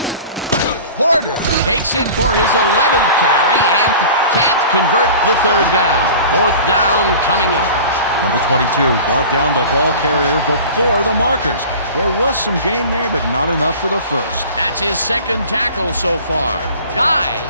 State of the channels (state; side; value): inverted; both; correlation -0.40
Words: Porter takes it for his 11th carry and can't convert the third down. Fourth down coming up. Number 22 brought down the ball carrier before the markers. There was some gain there, but not enough for the first. That's his second tackle so far. Guy